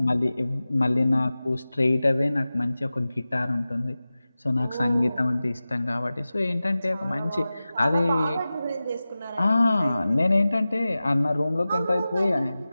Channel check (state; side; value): inverted; both; correlation -0.96